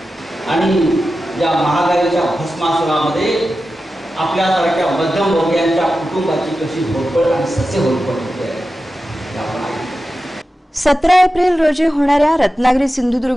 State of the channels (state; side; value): normal; both; correlation 0.92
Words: आणि या महागाईच्या भस्मासुरामध्ये आपल्यासारख्या मध्यमवर्गीयांच्या कुटुंबाची कशी होरपळ आणि सस्य होरपळ होते आपण आहे। 17 एप्रिल रोजी होणाऱ्या रत्नागिरी